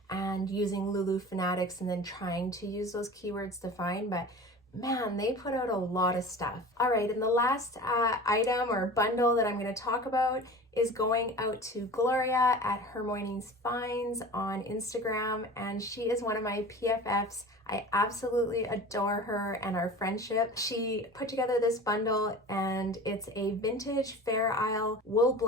and using Lulu Fanatics and then trying to use those keywords to find, but man, they put out a lot of stuff. All right, and the last item or bundle that I'm going to talk about is going out to Gloria at Her Mornings Finds on Instagram, and she is one of my PFFs. I absolutely adore her and our friendship. She put together this bundle, and it's a vintage Fair Isle wool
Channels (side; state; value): both; normal; correlation 0.37